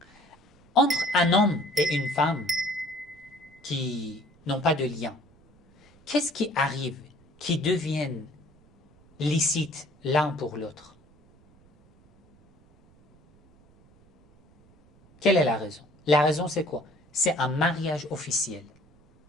Entre un homme et une femme qui n'ont pas de lien, qu'est-ce qui arrive qui deviennent licites l'un pour l'autre? Quelle est la raison? La raison, c'est quoi? C'est un mariage officiel,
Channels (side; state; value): right; noise; rumble, 29 dB below the sound